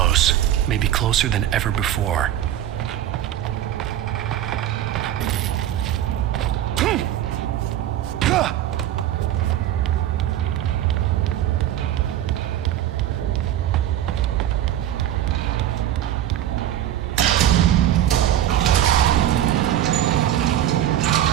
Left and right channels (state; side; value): quieter; left; 11.9 dB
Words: Maybe closer than ever before.